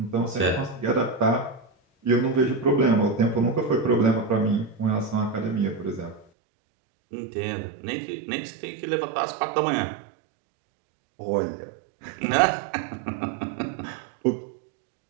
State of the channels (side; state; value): left; drops out; at 6.2 s